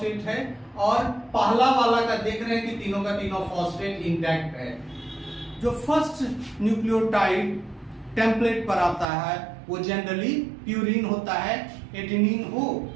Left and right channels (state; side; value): drops out; left; at 9.1 s